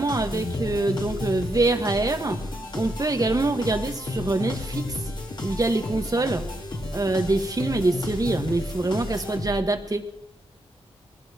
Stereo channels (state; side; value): normal; both; correlation 0.80